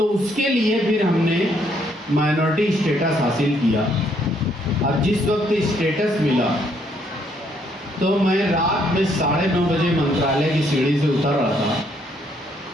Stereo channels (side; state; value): both; normal; correlation 0.70